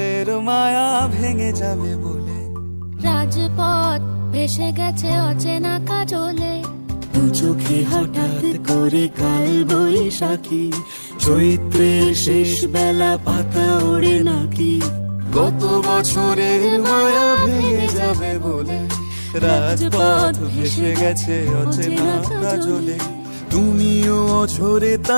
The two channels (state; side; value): inverted; both; correlation -1.00